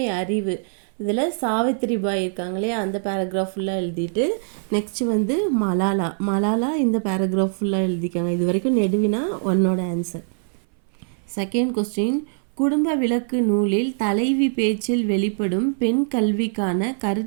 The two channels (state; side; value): silent; left; 59 dB below the other